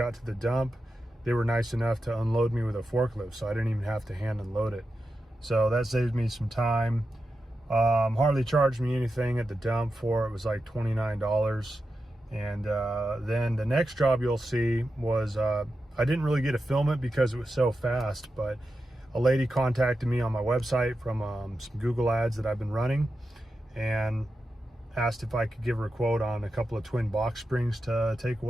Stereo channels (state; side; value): normal; both; correlation 0.90